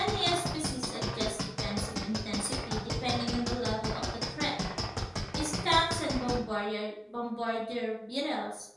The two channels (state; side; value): identical; both; correlation 1.00